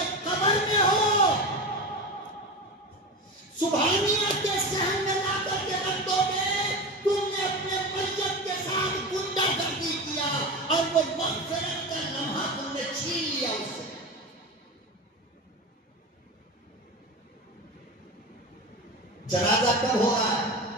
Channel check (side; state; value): both; normal; correlation 0.25